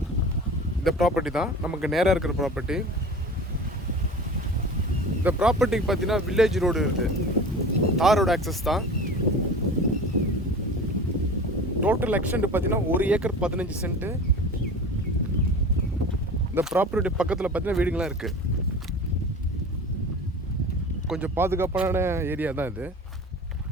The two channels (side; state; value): both; normal; correlation 0.37